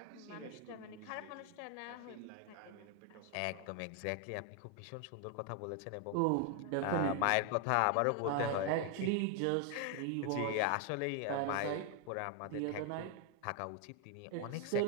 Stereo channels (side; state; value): both; different; correlation 0.01